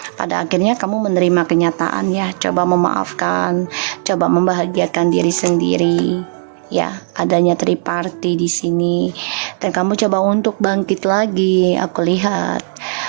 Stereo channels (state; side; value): silent; left; 62 dB below the other